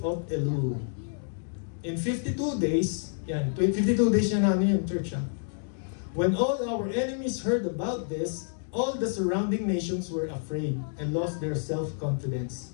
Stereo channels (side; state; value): right; silent; digital silence